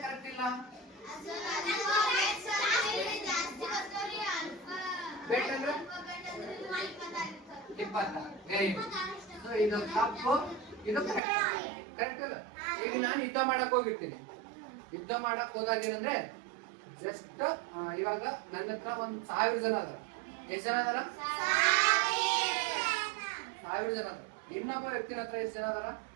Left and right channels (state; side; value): drops out; left; at 11.2 s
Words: ಕರೆಕ್ಟ್ ಇಲ್ಲ ಬೆಟ್ ಅಂದ್ರೆ 20 ವೆರಿ ಗುಡ್ ಸೊ ಇದು ತಪ್ಪು ಇದು ಕರೆಕ್ಟ್ ಇಲ್ಲ ಈಗ ನಾನು ಯುದ್ಧ ಮಾಡಕ್ ಹೋಗಿರ್ತೀನಿ ಯುದ್ಧ ಮಾಡಕ್ ಹೋದಾಗ ಏನಂದ್ರೆ ಜಸ್ಟ್ ಇವಾಗ ನನ್ನ ಹತ್ರ 1000 ಜನ ಅದ ಎಷ್ಟು ಜನ ಅದಾರ 1000 ಜನ ಅದ ಇನ್ನೊಬ್ಬ ವ್ಯಕ್ತಿನ ಹತ್ರ ಎಷ್ಟು ಜನ ಅದಾರ